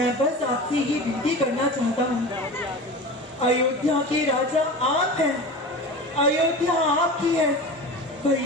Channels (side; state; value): both; normal; correlation 0.31